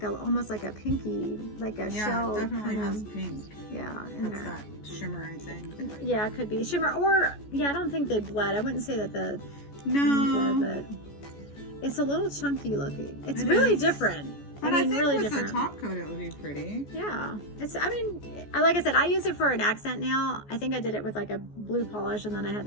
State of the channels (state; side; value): late; right; 14 ms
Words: almost like a pinky, like a shell. Yeah, it definitely kind has of, pink. Yeah. That's that shimmer, I think. Yeah, it could be. Shimmer, or, yeah, I don't think they bled. I wouldn't say that the... No. But it's a little chunky looking. It's really different. But I think really with different. the top coat, it would be pretty. Yeah. Like I said, I use it for an accent nail. I think I did it with like a blue polish, and then I had